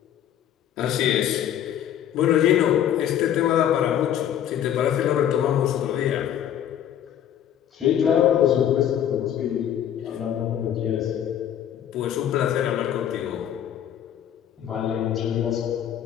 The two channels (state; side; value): quieter; right; 10.2 dB